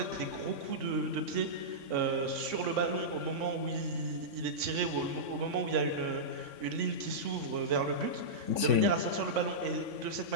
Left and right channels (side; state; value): left; late; 3.6 ms